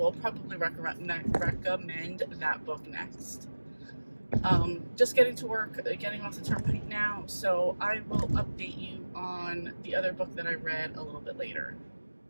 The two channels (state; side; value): inverted; both; correlation -1.00